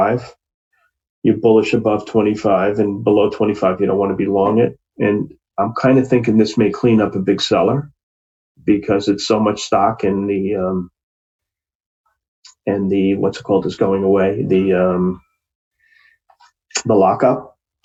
You're bullish above 25, and below 25, you don't want to be long it. And I'm kind of thinking this may clean up a big seller because it's so much stock, and the what's it called is going away, the lockup.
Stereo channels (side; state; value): both; identical; correlation 1.00